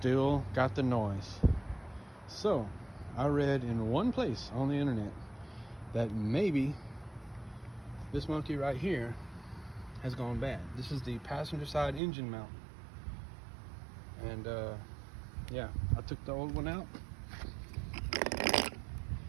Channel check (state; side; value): drops out; left; at 12.0 s